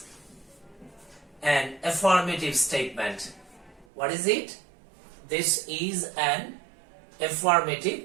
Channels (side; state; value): left; drops out; at 3.9 s